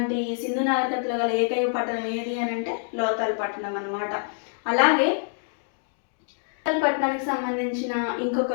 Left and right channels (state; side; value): silent; right; digital silence